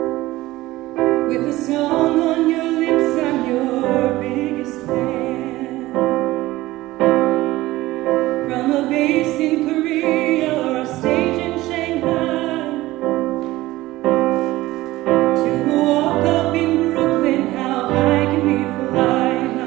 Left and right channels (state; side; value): quieter; left; 17.7 dB